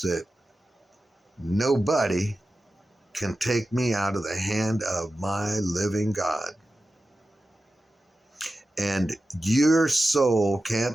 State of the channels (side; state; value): both; normal; correlation 0.93